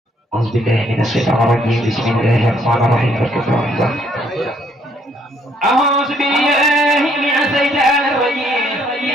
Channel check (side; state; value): both; normal; correlation 0.67